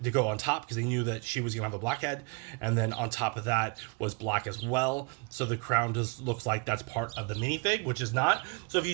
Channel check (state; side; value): quieter; left; 31.5 dB